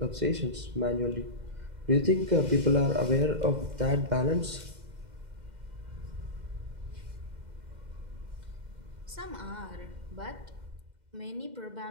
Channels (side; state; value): left; late; 2.0 ms